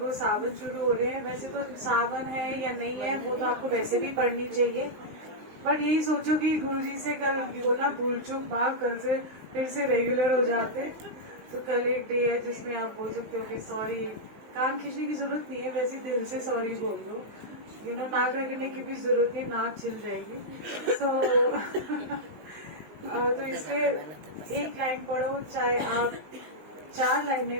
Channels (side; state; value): left; late; 20 ms